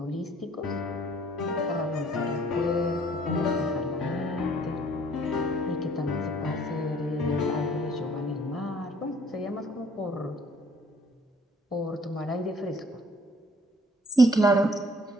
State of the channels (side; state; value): both; normal; correlation 0.58